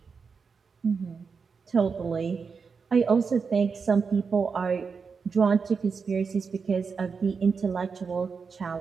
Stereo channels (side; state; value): left; quieter; 5.4 dB